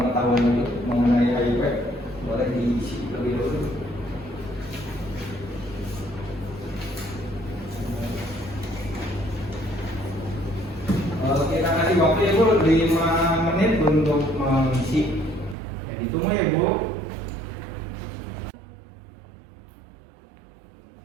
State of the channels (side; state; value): left; drops out; at 15.6 s